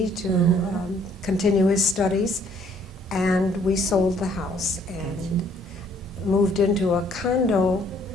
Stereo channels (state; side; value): normal; both; correlation 0.62